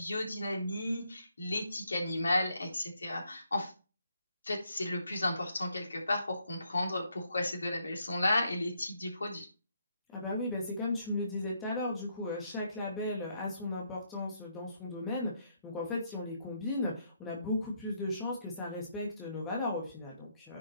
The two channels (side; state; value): both; inverted; correlation -0.74